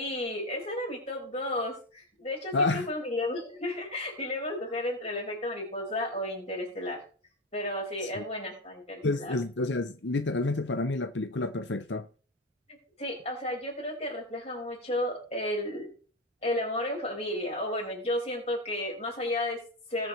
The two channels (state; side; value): normal; both; correlation 0.17